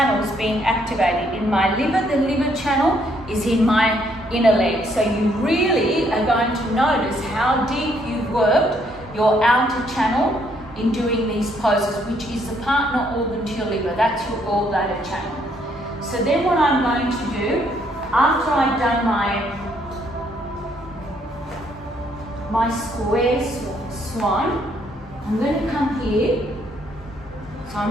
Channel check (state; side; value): normal; both; correlation 0.70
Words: being activated. In my liver, the liver channel is in my inner leg. So you really are going to notice how deep you've worked your outer channel in doing these poses, which is the partner organ to your liver. That's your gallbladder channel. So then what I'm going to do, after I've done my square swan, I'm going to come here. So